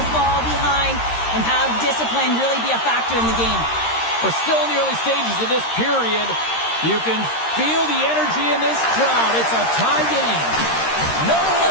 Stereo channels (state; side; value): late; right; 13 ms